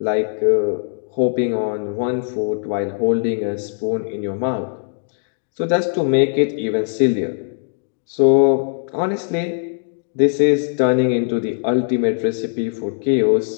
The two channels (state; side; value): silent; right; digital silence